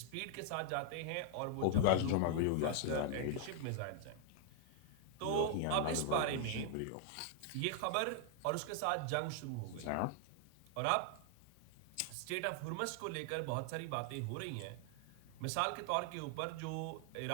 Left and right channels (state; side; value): different; both; correlation 0.00